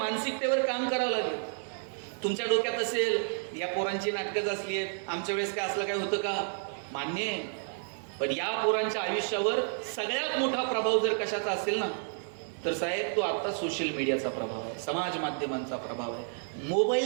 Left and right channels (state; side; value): silent; left; 57 dB below the other